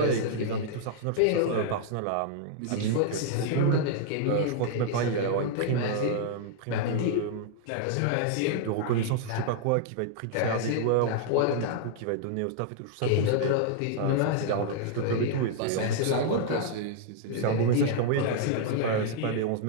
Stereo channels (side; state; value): both; different; correlation -0.01